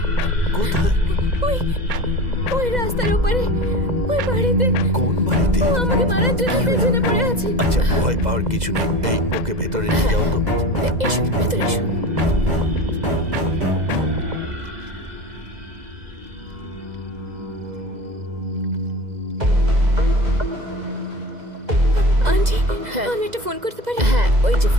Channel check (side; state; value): left; late; 2.0 ms